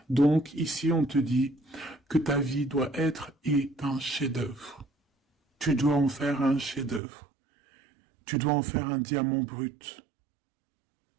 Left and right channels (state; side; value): drops out; left; at 7.0 s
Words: Donc, ici, on te dit que ta vie doit être un chef-d'œuvre. Tu dois en faire un chef-d'œuvre. Tu dois en faire un diamant brut.